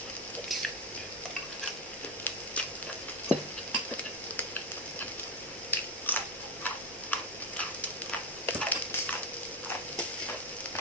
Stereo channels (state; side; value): normal; both; correlation 0.14